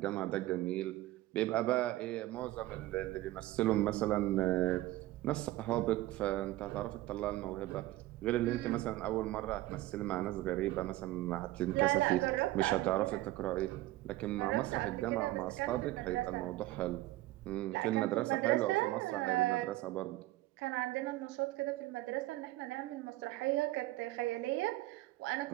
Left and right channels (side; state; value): left; quieter; 17.0 dB